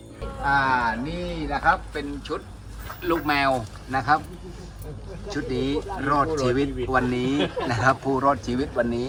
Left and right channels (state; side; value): identical; both; correlation 1.00